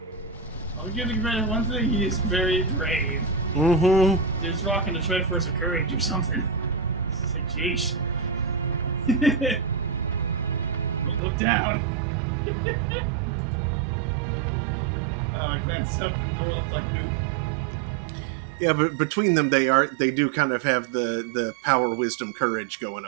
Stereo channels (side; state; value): left; drops out; at 11.2 s